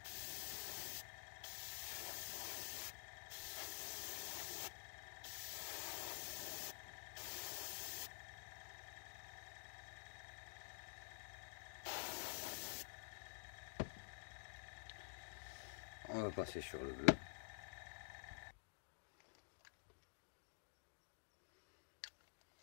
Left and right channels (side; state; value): right; silent; digital silence